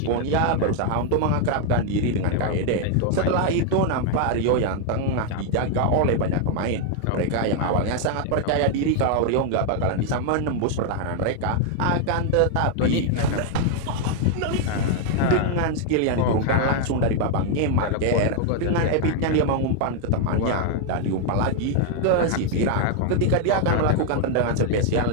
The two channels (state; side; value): different; both; correlation 0.00